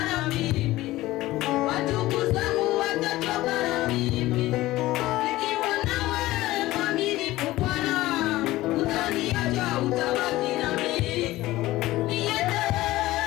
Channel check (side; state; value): right; quieter; 17.3 dB